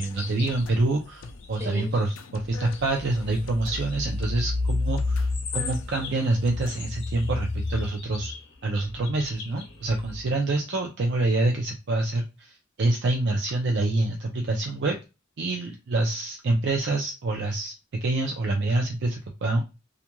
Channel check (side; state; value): both; normal; correlation 0.71